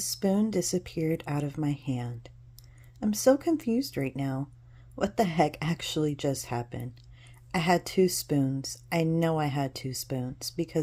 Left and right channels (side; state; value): both; identical; correlation 1.00